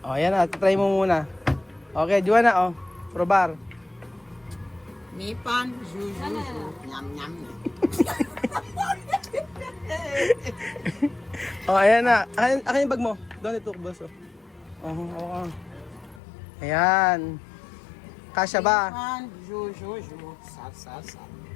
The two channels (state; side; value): drops out; right; at 16.2 s